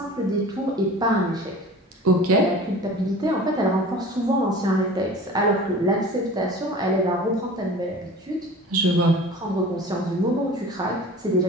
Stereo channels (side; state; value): both; normal; correlation 0.40